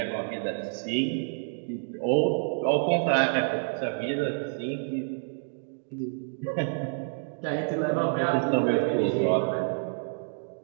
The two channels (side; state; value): left; silent; digital silence